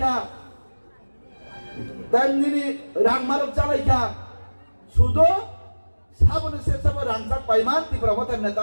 তেমনি রাংমারক চালাইখা, শুধু সাবনে সে সব রাংজাক পাইমান ত্রিপুরা মতা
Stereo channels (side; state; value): both; inverted; correlation -1.00